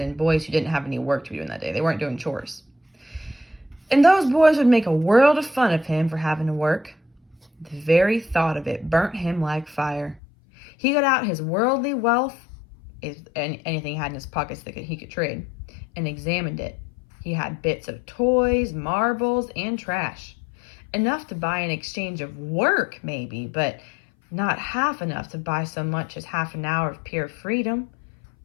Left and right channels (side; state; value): right; drops out; at 10.2 s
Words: boys who didn't have any work to be doing that day. They weren't doing chores. And those boys would make a world of fun of him for having to work. The very thought of it burnt him like fire. He got out his worldly wealth, anything he had in his pockets that he could trade, and examined it. He had bits of toys, marbles, and trash. Enough to buy in exchange of work, maybe, but not half enough to buy so much as half an hour of pure freedom.